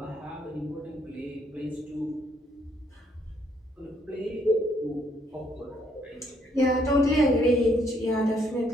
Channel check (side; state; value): both; normal; correlation 0.70